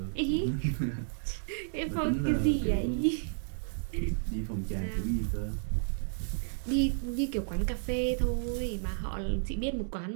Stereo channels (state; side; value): silent; left; 56 dB below the other